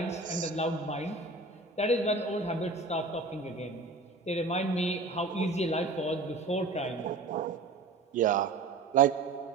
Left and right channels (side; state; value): left; quieter; 3.5 dB